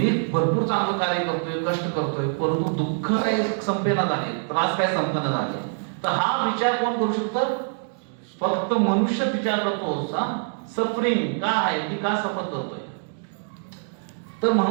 भरपूर चांगलं कार्य करतोय, कष्ट करतोय, परंतु दुःख काही संपेना झाले, त्रास काय संपना झाले. तर हा विचार कोण करू शकतं? फक्त मनुष्य विचार करतो. सफरिंग का आहे, की का सफर करतोय. तर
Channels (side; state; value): left; silent; digital silence